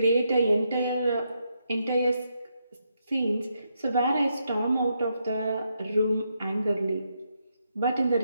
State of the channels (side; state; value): both; inverted; correlation -0.80